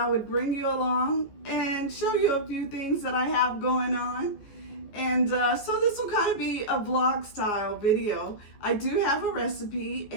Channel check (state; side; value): late; right; 14 ms